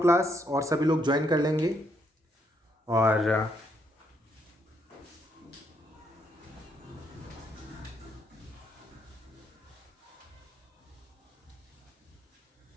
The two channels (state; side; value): normal; both; correlation 0.74